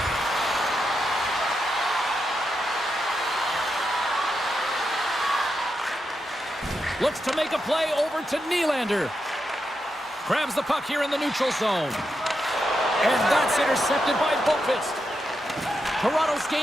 Looks to make a play over to Nylander. Grabs the puck here in the neutral zone. And that's intercepted by Boqvist. Toronto's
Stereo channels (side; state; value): both; normal; correlation 0.85